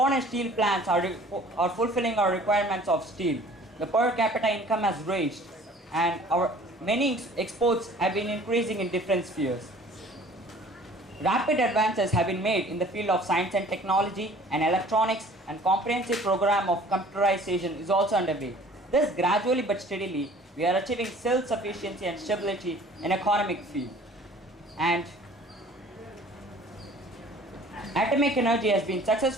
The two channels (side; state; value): both; normal; correlation 0.50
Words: steel plants are fulfilling our requirements of steel. The per capita income has raised and our many exports have been increasing in different spheres. Rapid advances have been made in the field of science and technology and electronics, and comprehensive program of computerization is also underway. Thus, gradually but steadily, we are achieving self-sufficiency and stability in economic field. And atomic energy has been